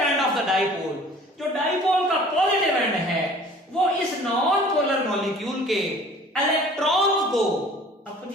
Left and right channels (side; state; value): both; normal; correlation 0.49